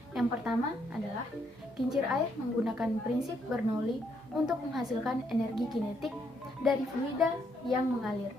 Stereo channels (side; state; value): both; normal; correlation 0.74